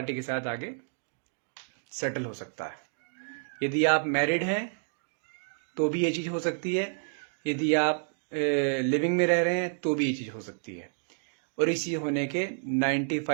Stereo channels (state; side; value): silent; left; digital silence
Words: के साथ आगे सेटल हो सकता है। यदि आप मैरिड हैं तो भी ये चीज हो सकती है, यदि आप लिविंग में रह रहे हैं तो भी ये चीज हो सकती है, और इसी होने के